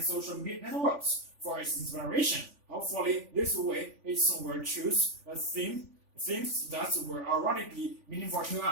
social media networks for its inspiration. Hopefully, this way it will choose themes that will already be meaningful to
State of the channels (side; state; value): left; late; 3.5 ms